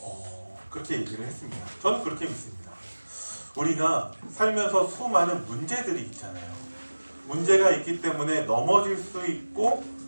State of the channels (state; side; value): inverted; both; correlation -1.00